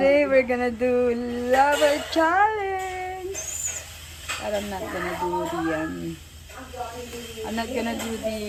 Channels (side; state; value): both; identical; correlation 1.00